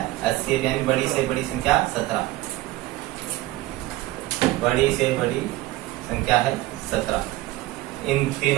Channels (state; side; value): quieter; left; 17.7 dB